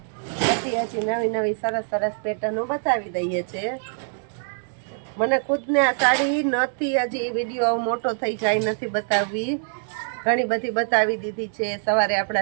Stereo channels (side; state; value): left; silent; digital silence